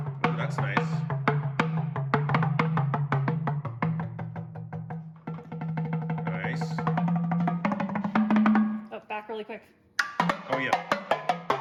that's nice. Oh, back really quick. Oh, yeah.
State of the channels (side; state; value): both; identical; correlation 1.00